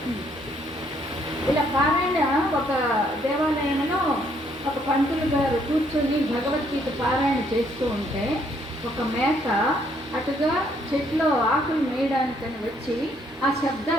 ఇలా పారాయణ ఒక దేవాలయంలో ఒక పంతులు గారు కూర్చొని భగవద్గీత పారాయణ చేస్తూ ఉంటే ఒక మేక అటుగా చెట్లో ఆకులు మేయడానికని వచ్చి ఆ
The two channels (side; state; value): both; normal; correlation 0.68